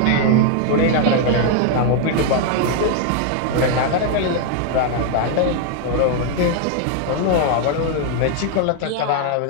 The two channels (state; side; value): different; both; correlation 0.00